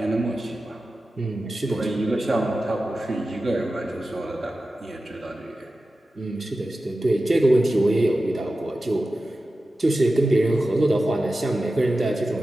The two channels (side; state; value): both; normal; correlation 0.94